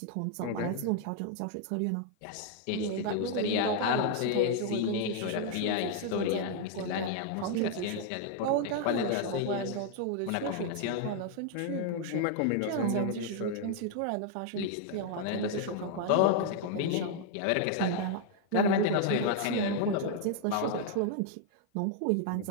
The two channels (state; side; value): different; both; correlation 0.00